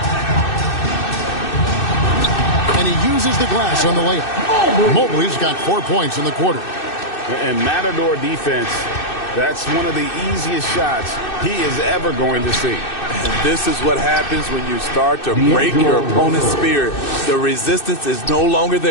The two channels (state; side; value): late; right; 2.6 ms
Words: And he uses the glass on the layup. Mobley's got 4 points in the quarter. And Matador defense, that's one of the easiest shots he is ever going to see. And this is what happens when you start to break your opponent's spirit. The resistance is no longer